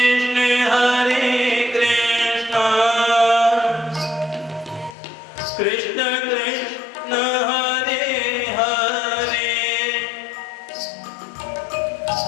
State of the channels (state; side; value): drops out; right; at 5.0 s